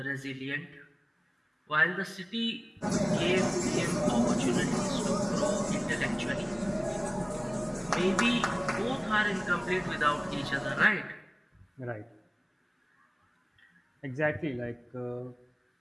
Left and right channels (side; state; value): both; identical; correlation 1.00